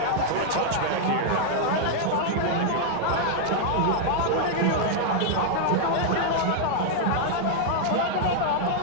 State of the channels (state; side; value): different; both; correlation -0.01